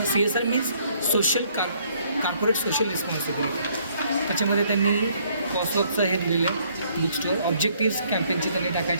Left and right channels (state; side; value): inverted; both; correlation -0.65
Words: CSR means corporate social responsibility. त्याच्यामध्ये त्यांनी कॉस्टवर्कचं हे दिलेलं आहे बुक स्टोअर. ऑब्जेक्टिव्स कॅम्पेनचे त्यांनी